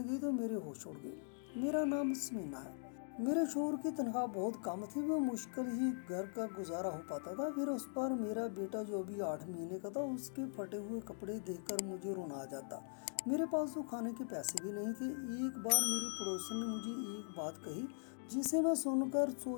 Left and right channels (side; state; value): right; silent; digital silence